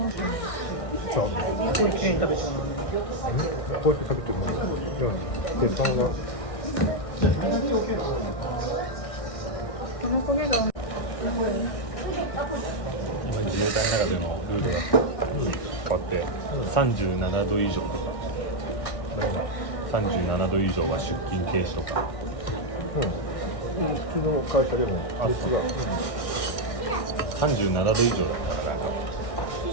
じゃあすごい綺麗に食べちゃうのね。こうやって食べてるのに鉄板がこの焦げがうまい。今自衛隊の中でのルールが変わって37度以上とか37度以上は出勤停止とか、普通の会社でも熱が、37度以上だったら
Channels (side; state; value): right; late; 1.6 ms